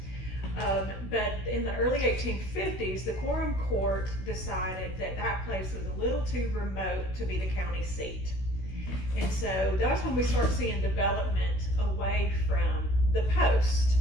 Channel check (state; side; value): late; right; 16 ms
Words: But in the early 1850s, the Quorum Court decided that that place was a little too remote to be the county seat. And so that's when we start seeing development away from the post.